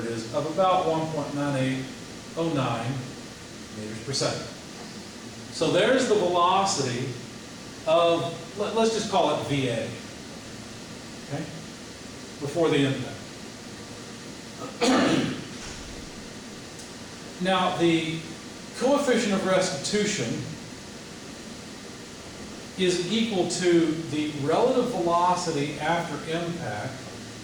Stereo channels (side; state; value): both; identical; correlation 1.00